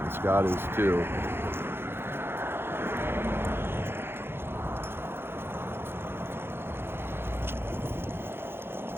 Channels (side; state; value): left; late; 0.11 ms